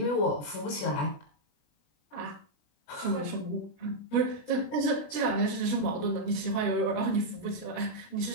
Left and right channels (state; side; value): late; right; 20 ms